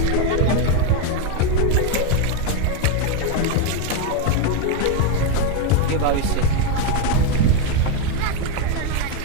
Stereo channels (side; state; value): both; different; correlation 0.02